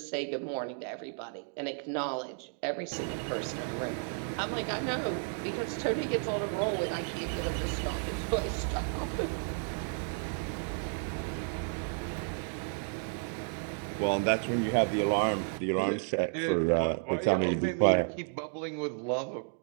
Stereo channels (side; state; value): left; silent; 56 dB below the other